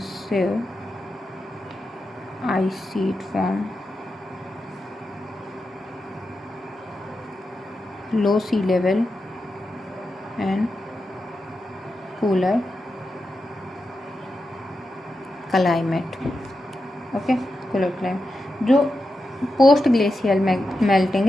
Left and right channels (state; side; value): normal; both; correlation 0.89